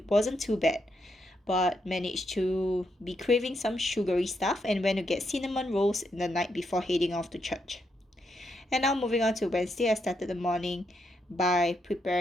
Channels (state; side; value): normal; both; correlation 0.80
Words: wasn't too bad, but managed to be craving some sugary stuff and went to get cinnamon rolls in the night before heading off to church. And now moving on to Wednesday, I started the morning by